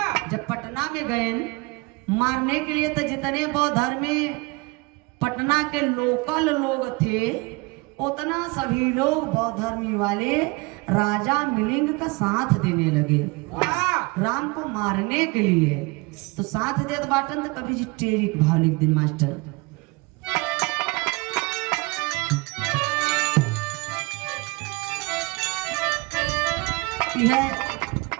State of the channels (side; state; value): left; quieter; 25.9 dB